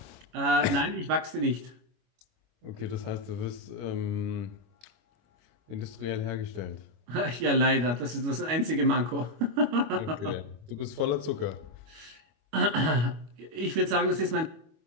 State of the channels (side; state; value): left; late; 25 ms